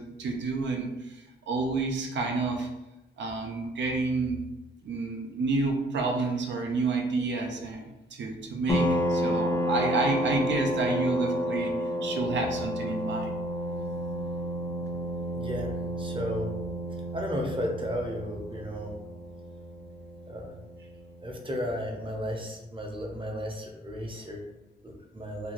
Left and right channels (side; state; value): both; normal; correlation 0.59